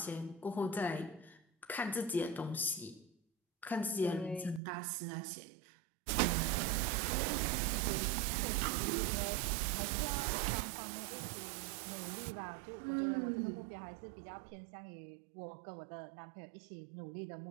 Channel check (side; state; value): left; drops out; at 4.6 s